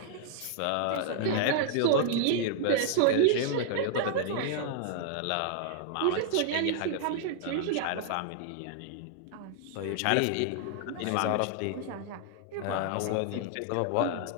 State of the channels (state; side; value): different; both; correlation -0.01